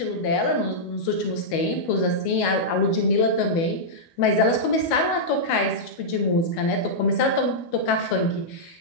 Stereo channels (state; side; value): late; right; 12 ms